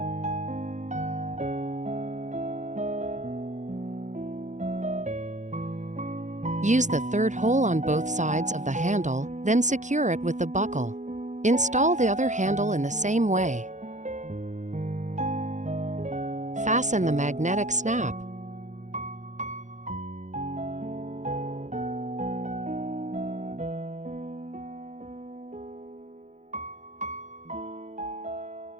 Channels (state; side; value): late; left; 0.35 ms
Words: Use the third hole on both sides of the handle, then secure it with the buckle. Install the other handle in the same way. fasten the magnetic snap.